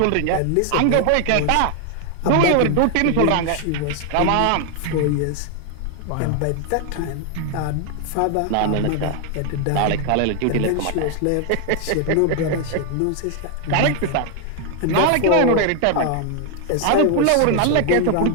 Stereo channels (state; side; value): different; both; correlation 0.00